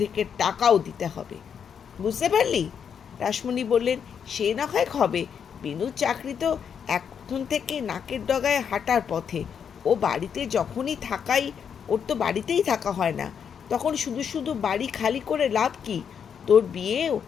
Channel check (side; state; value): right; quieter; 7.5 dB